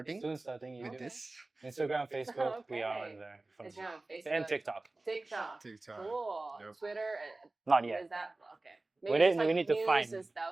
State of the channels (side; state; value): left; quieter; 3.1 dB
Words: Soon starting with YouTube. this. Instagram, Facebook, we are Okay. on there. Instagram, Facebook. And TikTok. TikTok. TikTok. Cool. Yep. Twitter. Not What yet. is that? Okay. We just, need- we need to news find- and